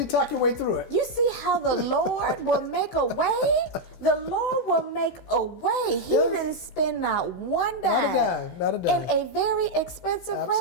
talk your way through it. You see how the Lord will make a way? The Lord will make a way. He didn't spend not one dime. Not a dime. In a very expensive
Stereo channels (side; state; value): right; late; 16 ms